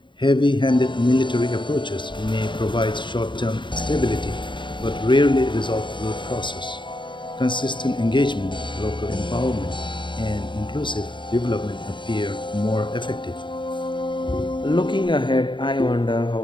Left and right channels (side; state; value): right; late; 0.23 ms